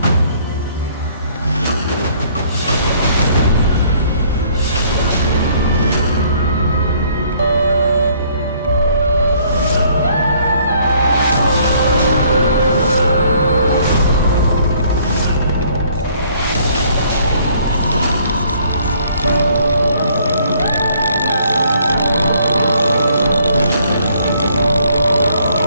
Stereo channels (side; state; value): both; inverted; correlation -0.62